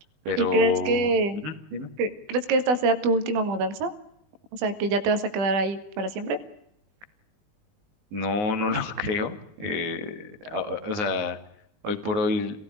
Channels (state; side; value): late; left; 20 ms